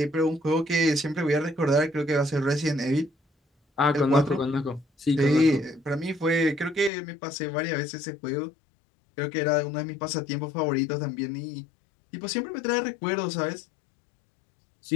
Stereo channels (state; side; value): drops out; right; at 6.9 s